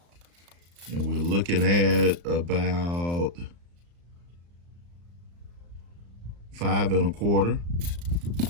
And we're looking at about 5 1/4.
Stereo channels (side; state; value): left; late; 35 ms